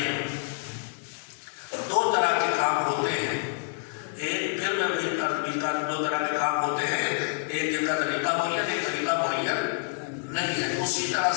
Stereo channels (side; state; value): right; silent; digital silence